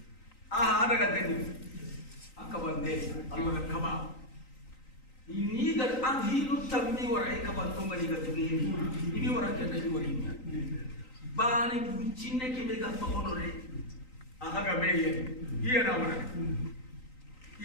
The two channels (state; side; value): late; right; 3.9 ms